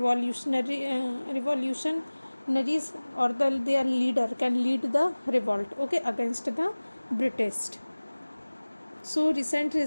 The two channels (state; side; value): inverted; both; correlation -1.00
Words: or their leader can lead the revolt. Okay, against the British. So recent